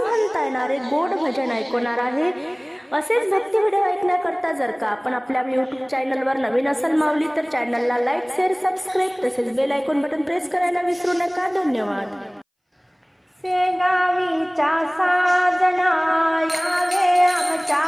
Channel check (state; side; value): identical; both; correlation 1.00